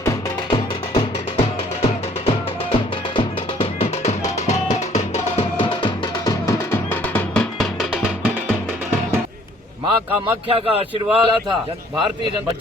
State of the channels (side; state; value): both; normal; correlation 0.58